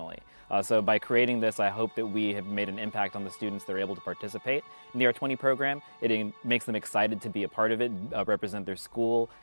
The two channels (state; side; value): inverted; both; correlation -1.00